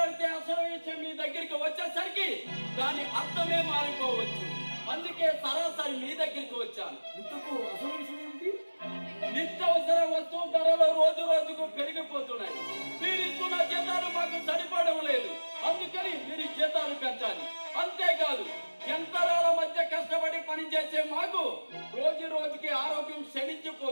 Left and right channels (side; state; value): both; inverted; correlation -1.00